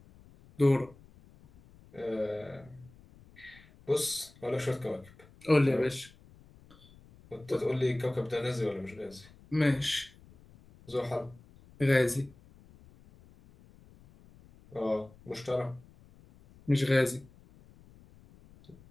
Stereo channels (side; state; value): left; noise; rumble, 25 dB below the sound